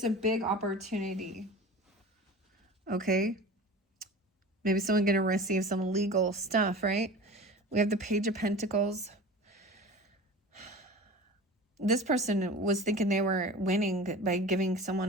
a big opportunity. Okay. Maybe someone going to receive some legal stuff, right? We have the Page of Pentacles. This person was thinking they were winning by giving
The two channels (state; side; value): normal; both; correlation 0.35